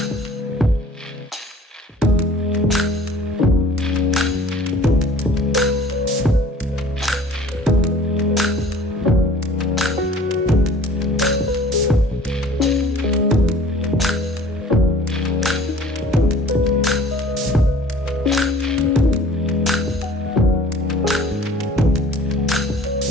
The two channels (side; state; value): both; normal; correlation 0.49